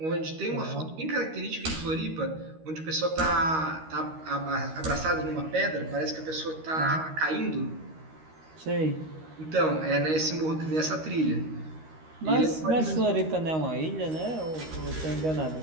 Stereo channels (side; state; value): left; late; 13 ms